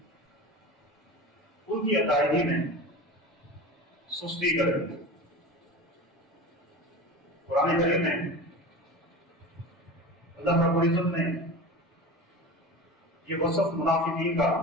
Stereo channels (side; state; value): both; normal; correlation 0.31